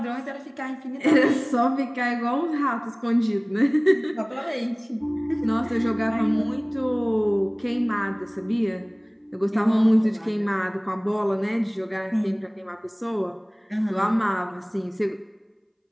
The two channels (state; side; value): identical; both; correlation 1.00